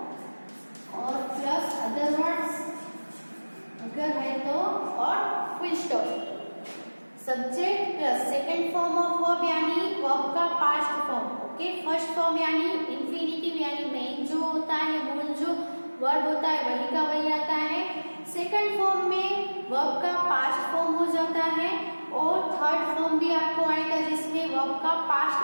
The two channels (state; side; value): inverted; both; correlation -1.00